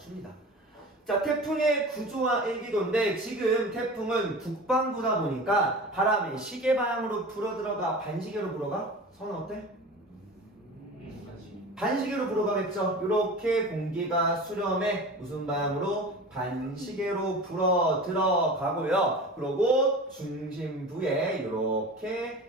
자, 태풍의 구조와 일기도인데 지금 태풍은 북반구다 보니까 바람이 시계 방향으로 불어들어가 반시계로 불어가? 선은 어때? 반시계로 불어가겠죠. 이렇게 공기가 수렴에 무슨 방향으로? 반시계로 불어 들어가고요. 그리고 중심부에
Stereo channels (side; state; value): both; normal; correlation 0.35